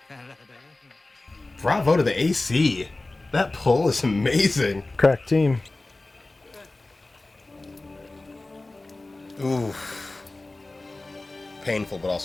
Bravo to the AC. That pull is amazing. Crack team. Oof. Painful, but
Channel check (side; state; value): right; quieter; 3.0 dB